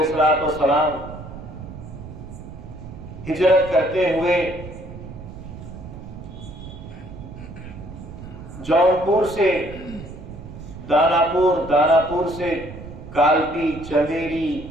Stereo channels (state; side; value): noise; right; rumble, 13 dB below the sound